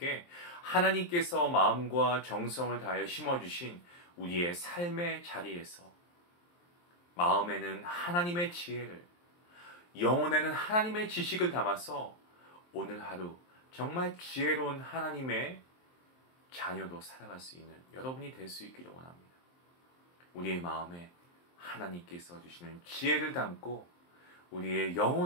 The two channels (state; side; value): late; right; 23 ms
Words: 하나님께서 마음과 정성을 다하여 심어주신 우리의 삶의 자리에서 마음에는 하나님의 지혜를, 영혼에는 하나님의 지식을 담아서 오늘 하루 정말 지혜로운 하나님의 자녀로 살아갈 수 있는 여러분이 될 수 있기를 원합니다. 우리의 마음에 하나님께서 주시는 지혜를 담고 우리의